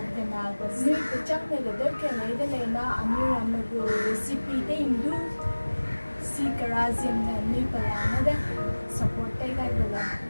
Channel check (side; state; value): both; inverted; correlation -1.00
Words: the Nagas. Ni kuchang ne gadar ke le na amir amagu recipe de indu si karazim na ni palana de support tay guy bala.